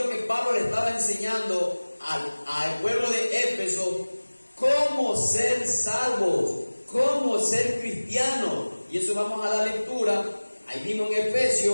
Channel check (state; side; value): inverted; both; correlation -1.00